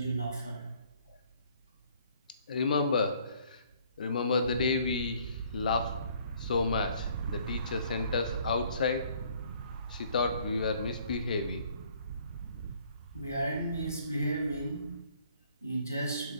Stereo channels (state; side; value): inverted; both; correlation -0.61